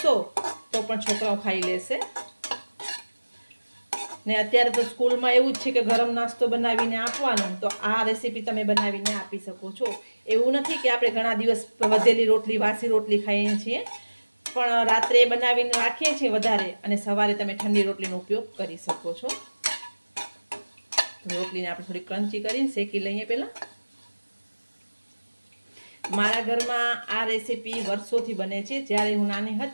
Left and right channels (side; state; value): both; inverted; correlation -1.00